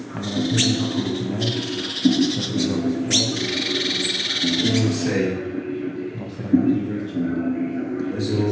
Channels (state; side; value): identical; both; correlation 1.00